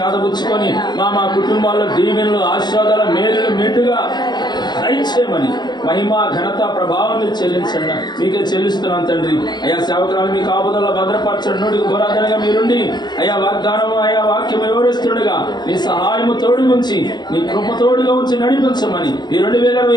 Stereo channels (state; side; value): late; right; 0.21 ms